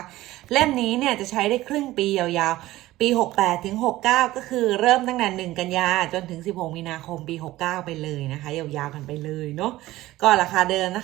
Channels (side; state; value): left; quieter; 16.7 dB